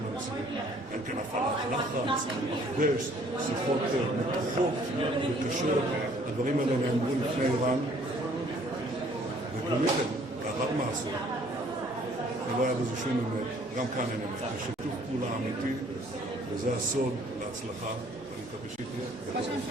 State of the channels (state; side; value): normal; both; correlation 0.59